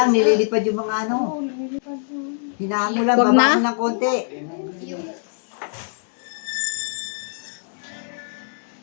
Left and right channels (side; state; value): right; silent; 63 dB below the other